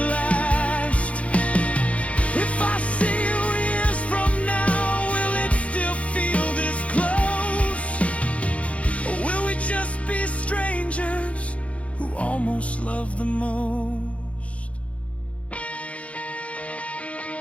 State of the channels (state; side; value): late; right; 0.064 ms